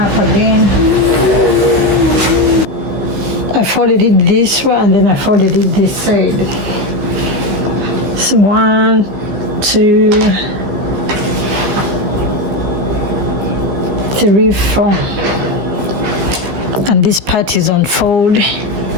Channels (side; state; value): left; late; 15 ms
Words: again. I folded it this way and then I folded it this side. So 1, 2, 3, 4. And this part is on fold.